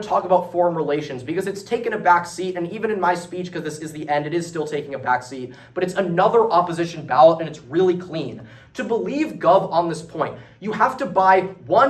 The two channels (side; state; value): both; identical; correlation 1.00